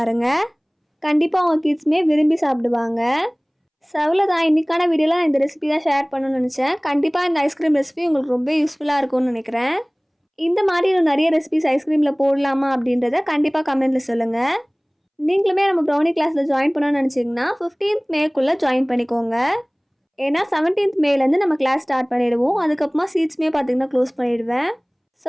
கண்டிப்பாக உங்கள் கிட்ஸுமே விரும்பி சாப்பிடுவாங்க. தான் இன்றைக்கான வீடியோவில் இந்த ரெசிபி தான் ஷேர் பண்ணணும்னு நினச்சேன். கண்டிப்பாக இந்த ஐஸ்கிரீம் ரெசிபி உங்களுக்கு ரொம்ப யூஸ்ஃபுல்லாக இருக்கும்னு நினைக்கிறேன். இந்த மாதிரி இன்னும் நிறைய ரெசிபிஸ் ஐஸ்கிரீமில் போடலாமா அப்படின்றத கண்டிப்பாக கமெண்ட்டில் சொல்லுங்கள். நீங்களுமே நம்ம ப்ரௌனி கிளாஸில் ஜாயின் பண்ணணும்னு நினச்சிங்கன்னா 15th மேக்குள்ளே ஜாயின் பண்ணிக்கோங்க. ஏன்னா 17th மேலேருந்து நம்ம கிளாஸ் ஸ்டார்ட் பண்ணிவிடுவோம். அதுக்கப்புறமா சீட்ஸுமே பார்த்திங்கன்னா க்ளோஸ் பண்ணிவிடுவேன்.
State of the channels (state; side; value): identical; both; correlation 1.00